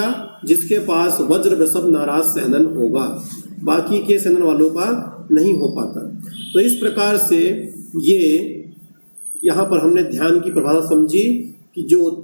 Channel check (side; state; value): both; inverted; correlation -1.00